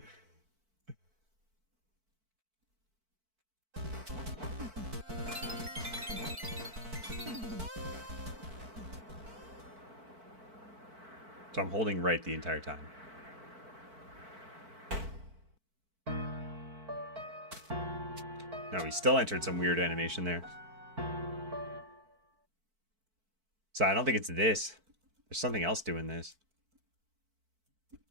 So I'm holding right the entire time. No, we still entered some weird animation there. So I don't think it's this. There's something else doing this.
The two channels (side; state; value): left; late; 4.5 ms